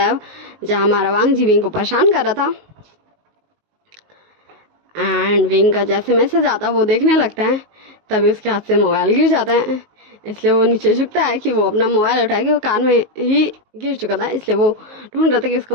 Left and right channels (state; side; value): late; left; 19 ms